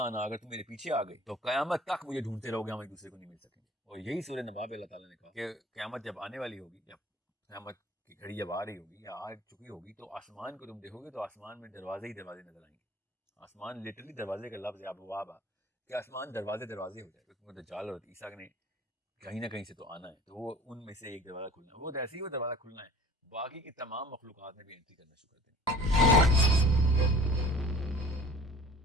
اگر تم میرے پیچھے آ گئی تو قیامت تک مجھے ڈھونڈتے رہو گے, ہم ایک دوسرے کو نہیں مل سکیں گے. اور یہی سورہ نبا میں اللہ تعالیٰ نے کہا کہ قیامت جب آنے والی ہوگی, جب قیامت کی گھڑی جب آ رہی ہوگی یا آ چکی ہوگی, تو آسمان کو تم دیکھو گے تو آسمان میں دروازے ہی دروازے نظر آئیں گے. آسمان لٹرلی دروازے کا لفظ ہے, ابواب کہ آسمان دروازے دروازے ہو جائے, کیونکہ دجال اور عیسیٰ نے کہیں نہ کہیں سے تو آنا ہے, تو وہ ان میں سے ایک دروازہ کھلنا ہے, وہ ایسے ہی وہ دروازہ کھلنا ہے, باقی کی تمام مخلوقات نے بھی انٹری کرنا شروع کر دیں.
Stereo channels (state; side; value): normal; both; correlation 0.46